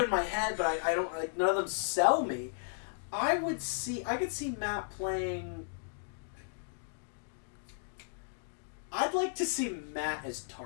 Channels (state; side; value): silent; right; digital silence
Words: in my head, but I don't like none of them sell me. I could see Matt playing. I'd like to see Matt as